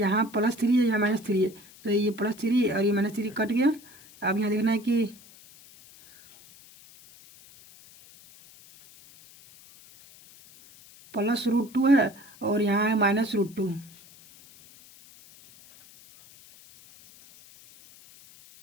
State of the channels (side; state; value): left; noise; hiss, 23 dB below the sound